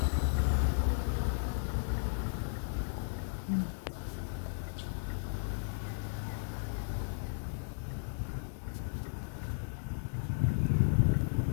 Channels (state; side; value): silent; right; digital silence